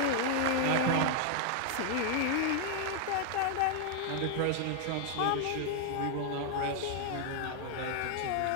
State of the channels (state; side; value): different; both; correlation 0.00